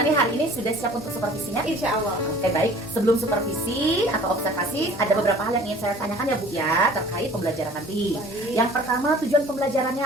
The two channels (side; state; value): both; normal; correlation 0.48